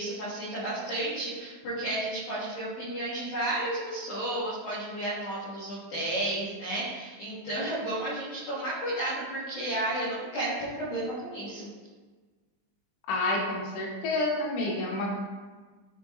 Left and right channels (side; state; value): right; late; 20 ms